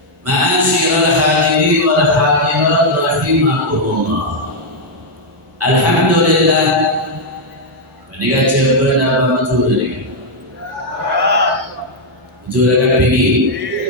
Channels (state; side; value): normal; both; correlation -0.02